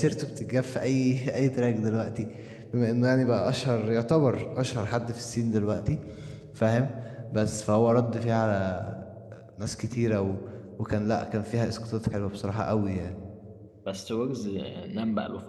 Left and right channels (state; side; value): identical; both; correlation 1.00